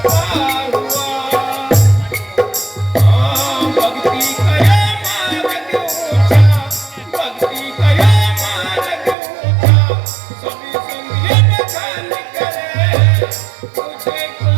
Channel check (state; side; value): drops out; left; at 9.2 s